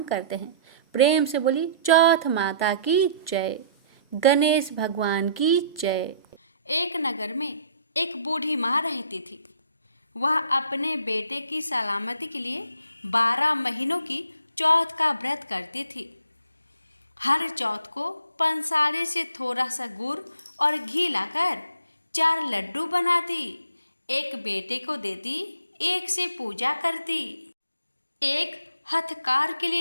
करते हैं। प्रेम से बोली चौथ माता की जय, गणेश भगवान की जय। एक नगर में एक बूढ़ी माँ रहती थी। वह अपने बेटे की सलामती के लिए 12 महीनों की चौथ का व्रत करती थी। हर चौथ को पंसारे से थोड़ा सा गुड़ और घी लाकर 4 लड्डू बनाती, एक बेटे को देती, एक से पूजा करती, एक हथकार के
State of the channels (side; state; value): both; inverted; correlation -0.59